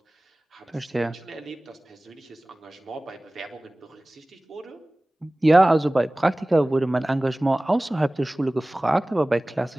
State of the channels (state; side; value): normal; both; correlation 0.98